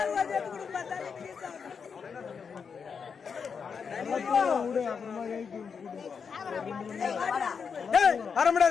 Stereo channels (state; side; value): quieter; right; 6.1 dB